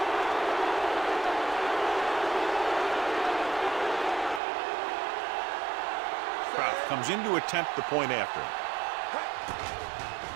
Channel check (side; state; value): left; drops out; at 4.4 s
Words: Kraft comes in to attempt the point after.